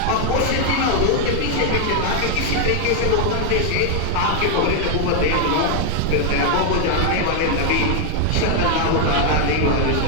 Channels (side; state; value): both; different; correlation 0.00